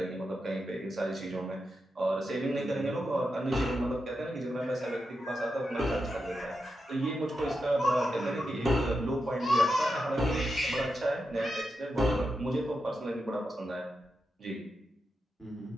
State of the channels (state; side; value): normal; both; correlation 0.88